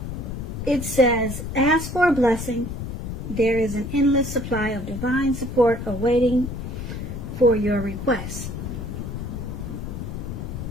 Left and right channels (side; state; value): left; noise; rumble, 6 dB below the sound